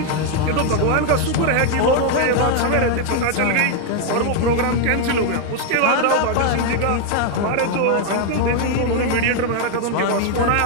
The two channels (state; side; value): different; both; correlation 0.00